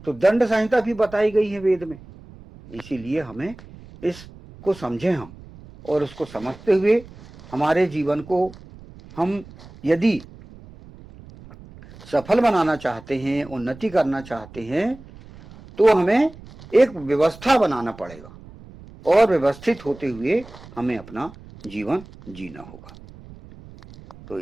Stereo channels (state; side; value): noise; right; rumble, 20 dB below the sound